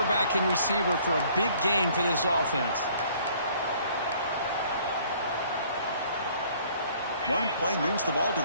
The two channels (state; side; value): inverted; both; correlation -0.58